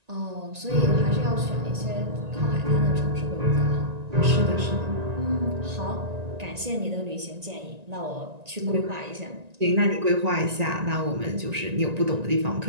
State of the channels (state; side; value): late; left; 1.9 ms